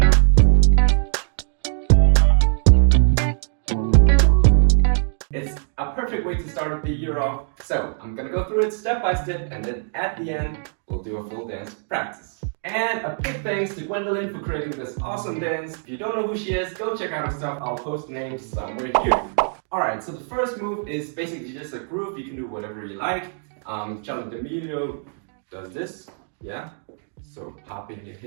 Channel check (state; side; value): silent; left; 58 dB below the other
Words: It's a perfect way to start the year off, so I'm gonna go through it step by step, and then at the end, we'll do a full dance practice. And a big thanks to Gwendolyn for creating this awesome dance. If you don't know who she is, go check out her stuff. I'll post names somewhere here. Alright, so the first move is basically just a groove. You can do whatever you like. Charlie D'Amelio does this, yeah? So popping your